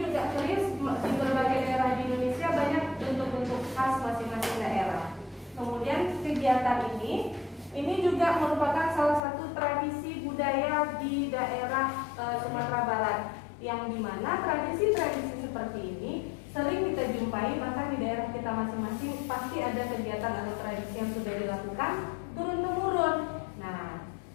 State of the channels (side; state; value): right; drops out; at 9.2 s